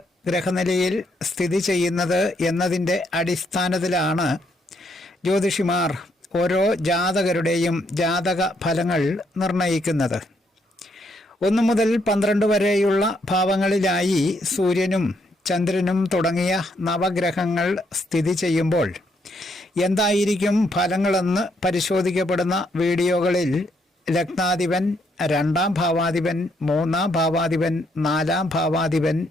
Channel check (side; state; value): both; normal; correlation 0.74